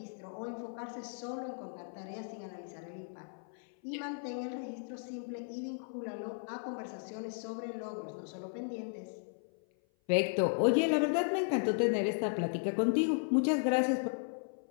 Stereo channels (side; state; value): right; silent; 54 dB below the other